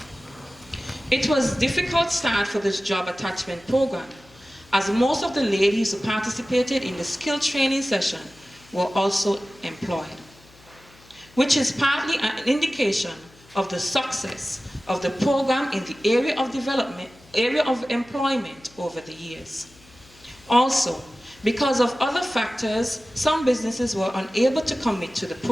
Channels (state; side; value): noise; left; hum, 27 dB below the sound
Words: It was a difficult start for this job attachment program, as most of the ladies who participated in the skill training session were also employed, which is partly an indication of the success of the program in the area of employment over the years. Also, because of other factors, some businesses were unable to commit to the